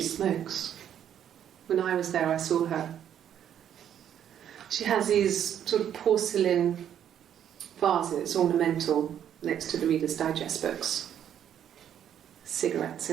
smokes. When I was there, I saw her. She has these sort of porcelain vases, ornamental, next to the Reader's Digest books. Cigarettes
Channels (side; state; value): left; quieter; 9.8 dB